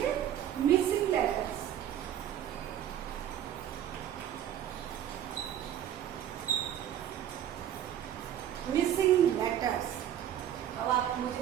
मिसिंग लेटर्स। Missing letters. अब आप मुझे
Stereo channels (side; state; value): left; quieter; 10.6 dB